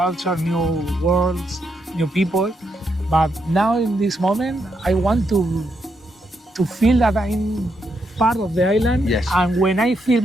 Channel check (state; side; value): normal; both; correlation 0.80